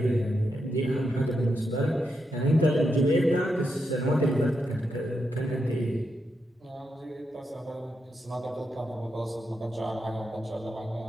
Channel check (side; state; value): both; normal; correlation 0.84